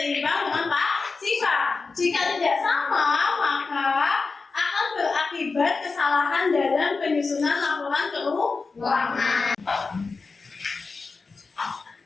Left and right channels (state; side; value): quieter; right; 4.3 dB